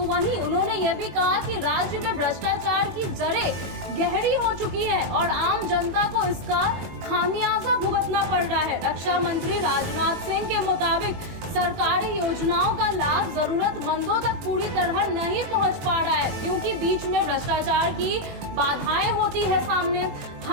वहीं उन्होंने ये भी कहा कि राज्य में भ्रष्टाचार की जड़ें गहरी हो चुकी है और आम जनता को इसका खामियाजा भुगतना पड़ रहा है। रक्षा मंत्री राजनाथ सिंह के मुताबिक सरकारी योजनाओं का लाभ जरूरतमंदों तक पूरी तरह नहीं पहुंच पा रहा है, क्योंकि बीच में भ्रष्टाचार की बाधाएं होती है सामने।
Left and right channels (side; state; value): left; late; 21 ms